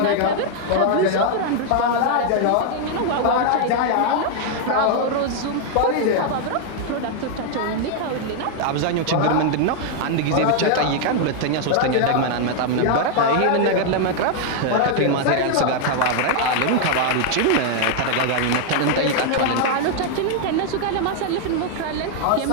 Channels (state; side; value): different; both; correlation 0.00